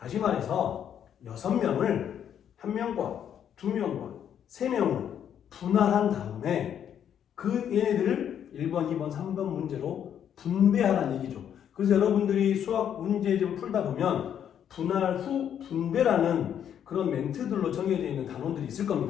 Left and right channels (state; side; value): quieter; right; 9.2 dB